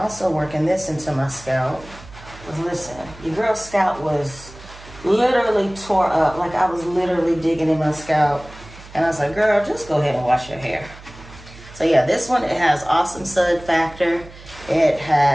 working this into my scalp. Because listen, your girl's scalp was literally tore up. Like I was literally digging in my scalp. And I was like, girl, just go ahead and wash your hair. So yeah, this one, it has awesome sud factor. It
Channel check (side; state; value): right; noise; hum, 19 dB below the sound